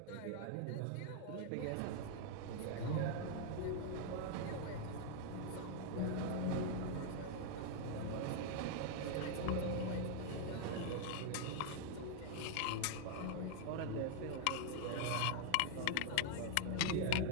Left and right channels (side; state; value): both; different; correlation 0.00